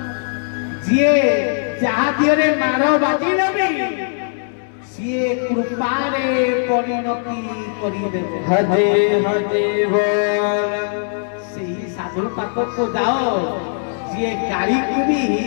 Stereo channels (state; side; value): silent; right; digital silence